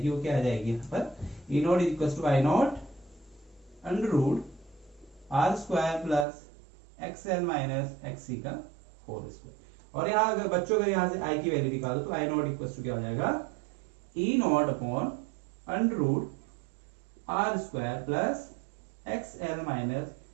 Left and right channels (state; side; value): drops out; left; at 6.2 s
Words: वो क्या आ जाएगी यहाँ पर, E naught is equal to I naught under root R square plus XL minus XC का होल स्क्वायर। और यहाँ अगर बच्चों अगर यहाँ से आई की वैल्यू निकालो तो आई नॉट इक्वल टू क्या हो जाएगा, e naught upon under root R square plus XL minus